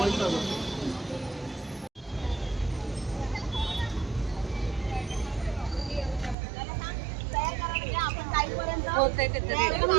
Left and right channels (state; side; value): drops out; left; at 6.4 s